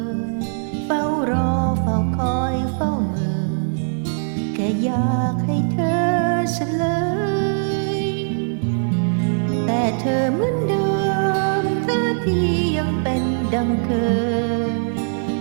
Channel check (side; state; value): left; silent; 61 dB below the other